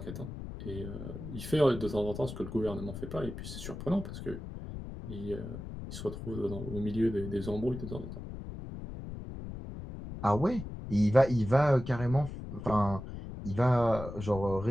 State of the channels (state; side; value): noise; left; rumble, 9 dB below the sound